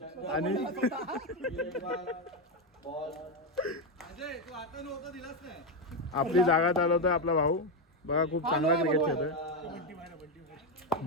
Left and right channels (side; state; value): both; normal; correlation 0.08